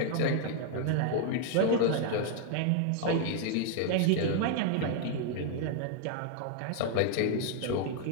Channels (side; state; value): both; different; correlation 0.00